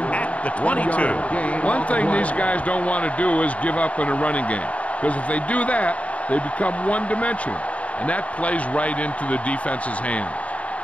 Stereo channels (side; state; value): right; late; 0.066 ms